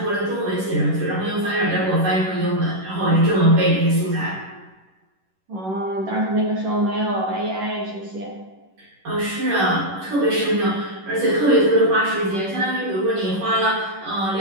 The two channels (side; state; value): left; late; 11 ms